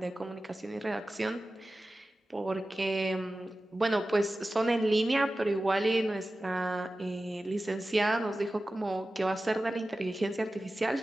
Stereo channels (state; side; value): normal; both; correlation 0.95